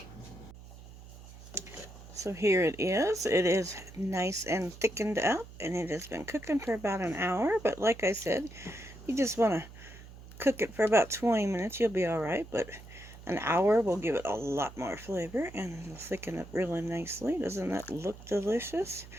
So here it is. It is nice and thickened up, and it has been cooking for about an hour. But like I said, you just want to cook it for about 20 minutes, you'll be alright, but an hour will give it a lot more flavor and it'll thicken up really nicely. Doesn't that look delicious?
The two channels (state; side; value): noise; right; hum, 17 dB below the sound